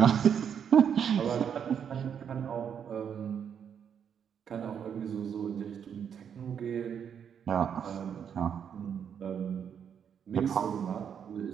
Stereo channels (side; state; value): left; quieter; 8.0 dB